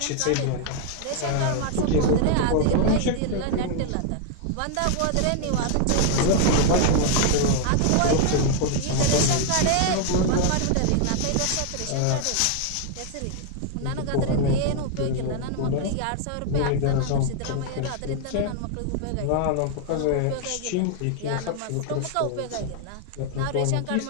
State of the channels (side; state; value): both; different; correlation 0.00